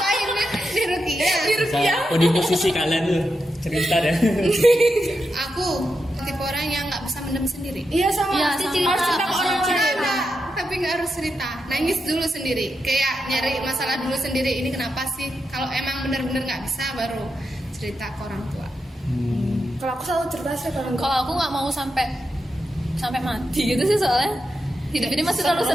Di Rukia. Oh, di posisi kalian tuh cerita ya. Aku tipe orang yang nggak bisa mendem sendiri. Iya sama. Iya, Harus sama. cerita ke orang lain. Ada, tapi nggak harus cerita. Nangis dulu sendiri. Kayak nyari masalah dulu sendiri. Ini kenapa sih? Kalau emang bener-bener nggak bisa, baru cerita ke orang tua. Kalau aku selalu cerita sih kalau enggak. Kalau aku nggak mau sampai mati gitu sih soalnya. Hidup ini masih terlalu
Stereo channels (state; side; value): normal; both; correlation 0.86